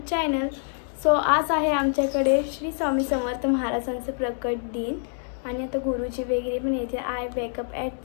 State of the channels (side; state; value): right; silent; 61 dB below the other